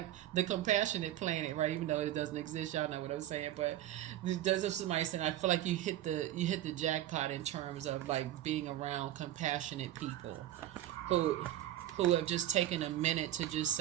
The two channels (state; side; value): quieter; left; 13.1 dB